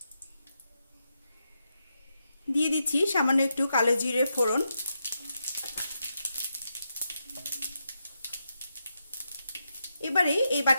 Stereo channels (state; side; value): inverted; both; correlation -0.85